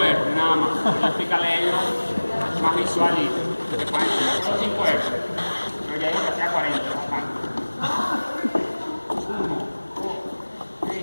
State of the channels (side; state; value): both; inverted; correlation -1.00